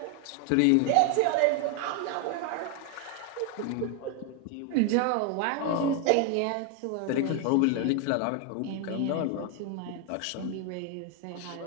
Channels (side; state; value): both; different; correlation 0.01